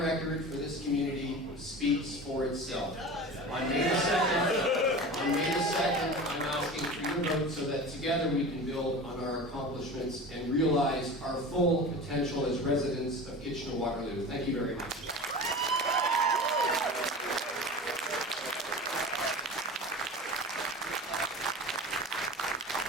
for this community speaks for itself. On May the 2nd, I'm asking for your vote so that together we can build on our accomplishments and realize our full potential as residents of Kitchener-Waterloo. Thank you very much.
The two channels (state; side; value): normal; both; correlation 0.33